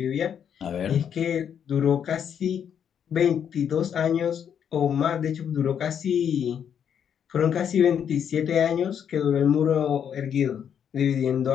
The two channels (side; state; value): right; quieter; 8.4 dB